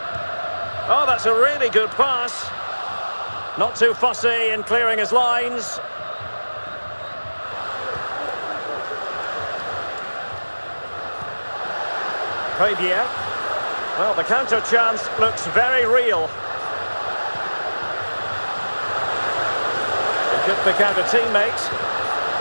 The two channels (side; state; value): both; inverted; correlation -1.00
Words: Oh, that's a really good pass. Not too fussy in clearing his lines. Javier. Well, the counter chance looks very real. It could pick out a teammate.